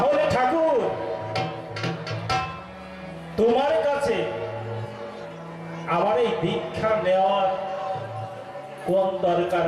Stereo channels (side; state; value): both; identical; correlation 1.00